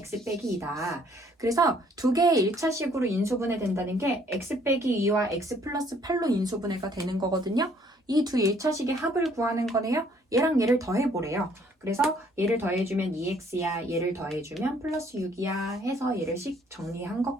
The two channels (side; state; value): both; normal; correlation 0.63